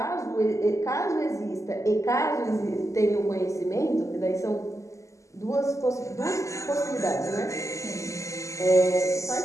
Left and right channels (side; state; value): right; late; 0.15 ms